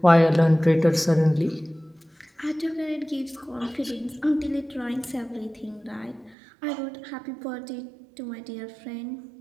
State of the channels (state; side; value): drops out; left; at 6.4 s